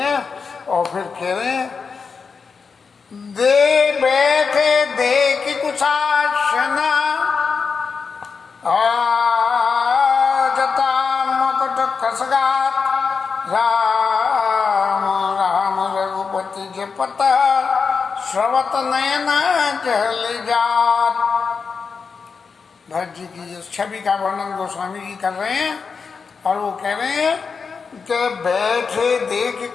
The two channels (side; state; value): right; quieter; 5.4 dB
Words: और फिर कह रहे हैं दे बैठे देख कुशासना खसगात राम राम रघुपति के पता श्रवत नयना जल जात। भरत जी की इस छवि का वर्णन गोस्वामी जी कर रहे हैं और वो कह रहे हैं कि बैठे